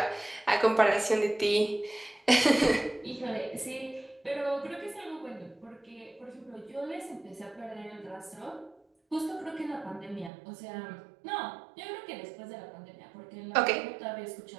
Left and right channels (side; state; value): left; drops out; at 10.3 s